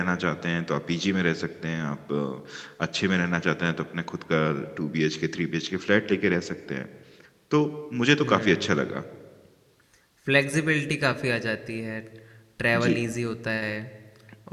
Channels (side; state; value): both; identical; correlation 1.00